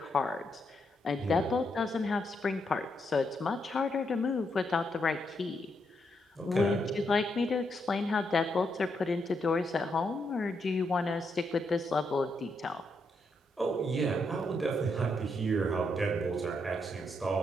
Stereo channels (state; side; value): normal; both; correlation 0.79